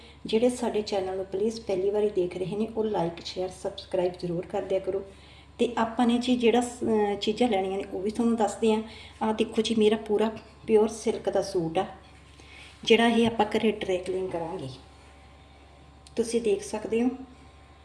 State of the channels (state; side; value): identical; both; correlation 1.00